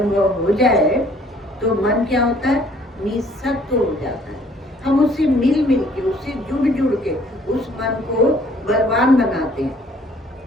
हो जाए तो मन क्या होता है, निसत्व हो जाता है। हम उससे मिल मिल के, उससे जुड़ जुड़ के उस मन को बलवान बनाते हैं।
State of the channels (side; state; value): both; normal; correlation 0.59